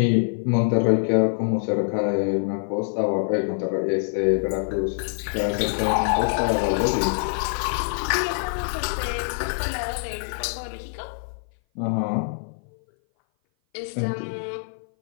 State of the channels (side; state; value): right; silent; 58 dB below the other